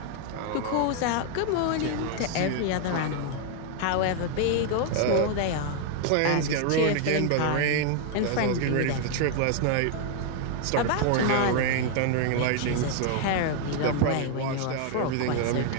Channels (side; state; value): both; different; correlation 0.00